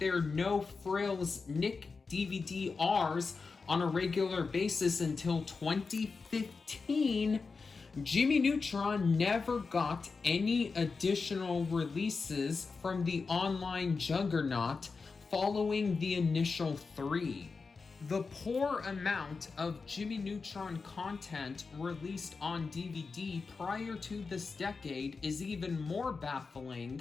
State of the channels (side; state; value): right; quieter; 4.6 dB